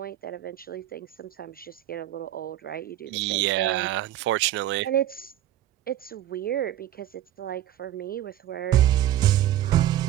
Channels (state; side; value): quieter; left; 12.9 dB